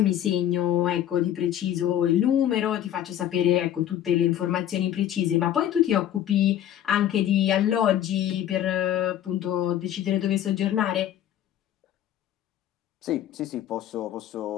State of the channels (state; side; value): quieter; right; 11.2 dB